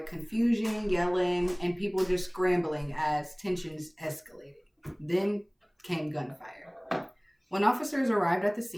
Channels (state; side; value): identical; both; correlation 1.00